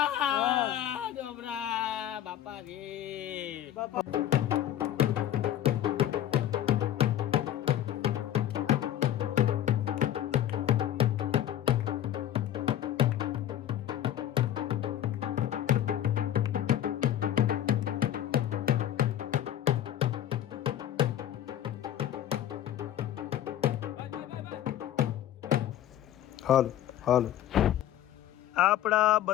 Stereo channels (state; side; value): quieter; right; 11.6 dB